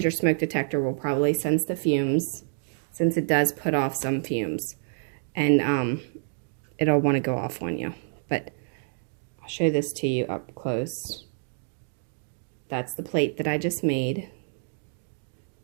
your smoke detector will probably sense the fumes, since it does put off some fumes. And it'll want to go off on you. But I'll show this to you up close. That's the plate that I just made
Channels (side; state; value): left; silent; digital silence